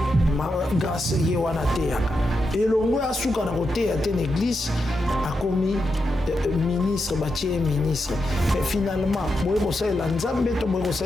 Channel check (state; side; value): normal; both; correlation 0.86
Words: Grâce ye wana te yaka. Elongo ya suka na kote ya te l'église a commis ministre, bâtier ministre. Mais finalement,